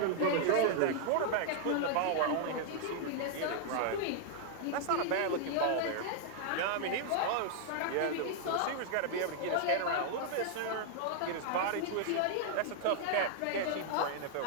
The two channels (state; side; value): different; both; correlation -0.01